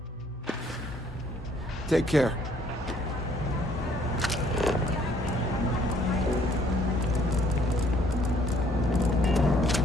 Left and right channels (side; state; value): both; normal; correlation 0.63